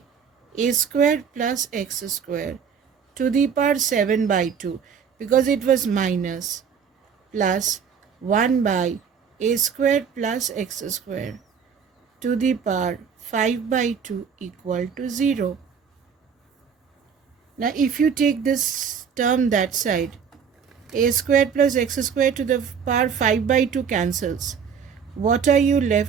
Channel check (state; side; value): quieter; left; 6.9 dB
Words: a square plus x square to the power 7 by 2, because it was minus, plus 1 by a square plus x square to the power 5 by 2 equal to 0. Now if you take this term that side, a square plus x square to the power 5 by 2 cancels. What are you